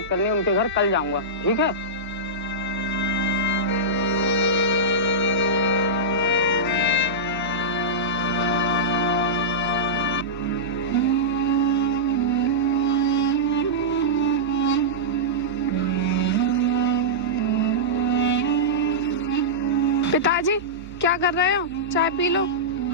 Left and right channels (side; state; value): both; normal; correlation -0.13